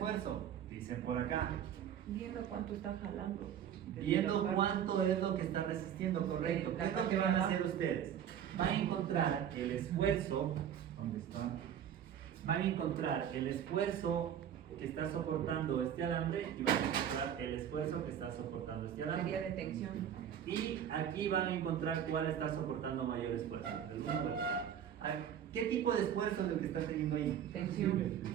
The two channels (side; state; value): left; quieter; 9.5 dB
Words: dicen por acá. Viendo cuánto está jalando. Viendo cuánto es lo que está resistiendo, correcto. ¿Qué es lo que van a hacer ustedes? Van a encontrar el esfuerzo, ¿dónde está? Van a encontrar el esfuerzo que está soportando este alambre y van a encontrar el esfuerzo que está soportando este alambre. Sería de tensión. Y aquí van a encontrar cuál está soportando mayor esfuerzo. El número. ¿Qué tipo de esfuerzo es el que está teniendo ahí? Tensión.